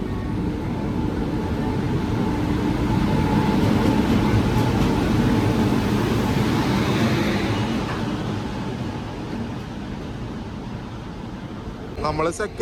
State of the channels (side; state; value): both; identical; correlation 1.00